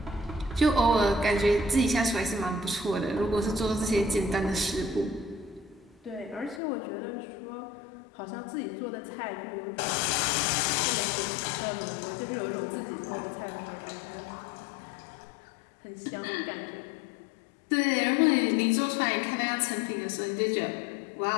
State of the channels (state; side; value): drops out; right; at 6.6 s